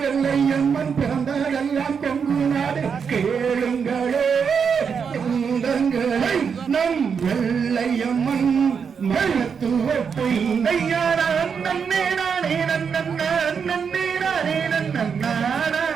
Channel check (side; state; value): left; quieter; 6.4 dB